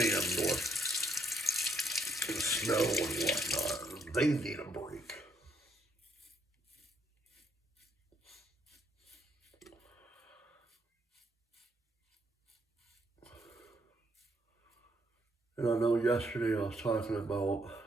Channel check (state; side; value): normal; both; correlation 0.73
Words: with snow and whatnot, they need a break. And I know yesterday I was talking about